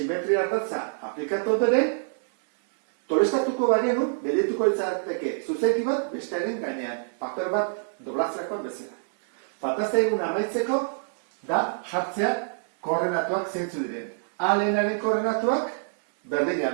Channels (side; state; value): left; silent; digital silence